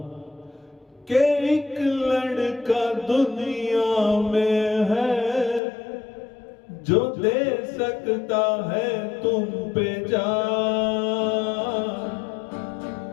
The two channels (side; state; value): right; drops out; at 5.6 s